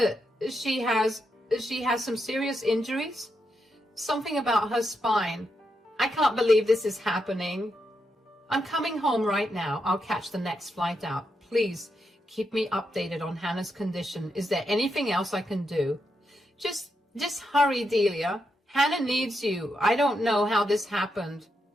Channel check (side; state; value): both; normal; correlation 0.83